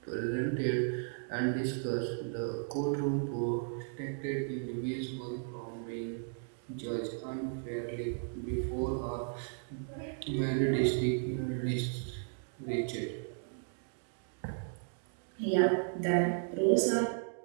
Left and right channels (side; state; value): left; silent; digital silence